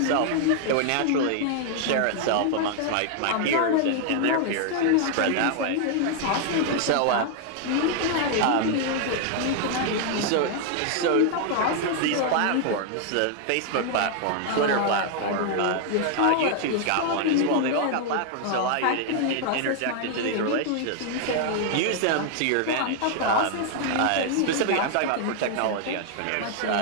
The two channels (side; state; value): both; different; correlation 0.00